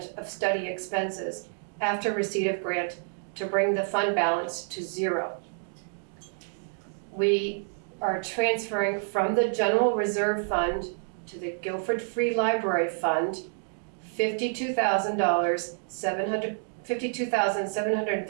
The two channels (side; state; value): left; silent; digital silence